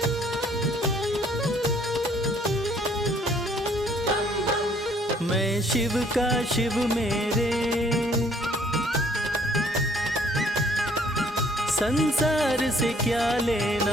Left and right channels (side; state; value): both; normal; correlation 0.61